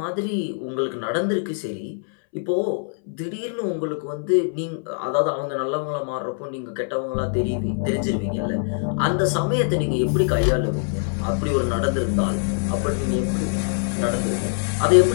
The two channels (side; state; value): right; silent; 63 dB below the other